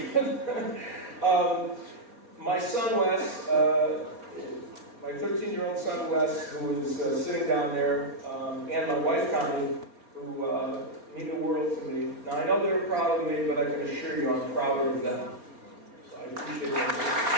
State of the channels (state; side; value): late; left; 4.6 ms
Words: good. My son Wes, my 13-year-old son Wes, who is sitting down there, and my wife Connie, who mean the world to me. Now I know they're proud of me, but I can assure you I'm prouder of them. So I appreciate that.